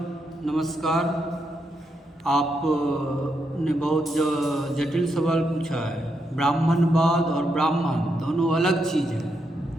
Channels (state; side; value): normal; both; correlation 0.81